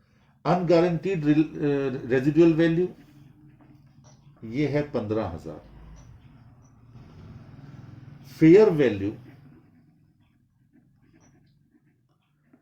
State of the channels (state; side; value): identical; both; correlation 1.00